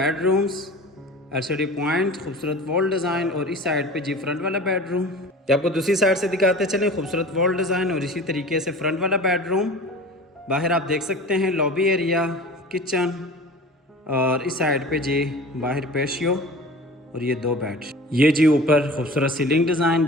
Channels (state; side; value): normal; both; correlation 0.39